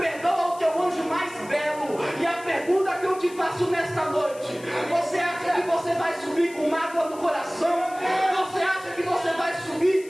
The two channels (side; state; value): left; noise; hiss, 20 dB below the sound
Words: o teu anjo mais belo. E a pergunta que eu te faço nesta noite: você acha que você vai subir com mágoa no coração? Você acha que você vai